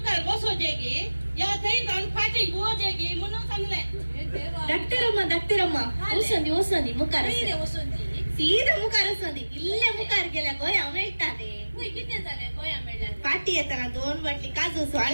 बसो जेगी या थई जाऊन फाटी गो जेगी म्हणून सांगले हे देवा धाकटे रम्मा ओसंदी मुकार नाही रे वसंती ಸೀದಾ ಮುಖಾರ ಸಂದಿ ಇಲ್ಲೇ ಮುಖಾರ ಗೆಲ್ಲ ಗೋಯ ಅವನ ಇಟ್ಟಾನೆ होय किती झाले गोया मेळ्या पाटी येताना 2 बाटली काजूसो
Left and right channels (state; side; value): inverted; both; correlation -1.00